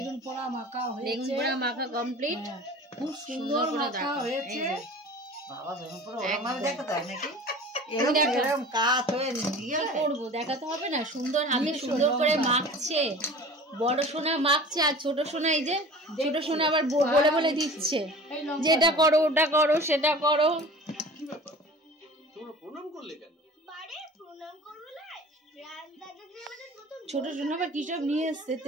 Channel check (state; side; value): normal; both; correlation 0.40